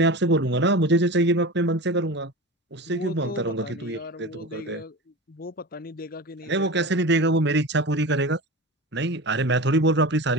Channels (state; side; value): normal; both; correlation 0.30